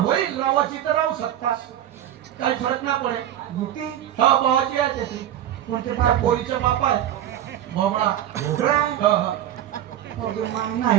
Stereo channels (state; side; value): quieter; left; 11.6 dB